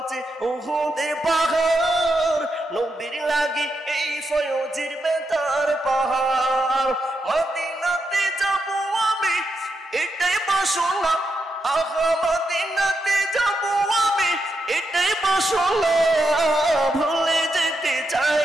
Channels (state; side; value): normal; both; correlation 0.84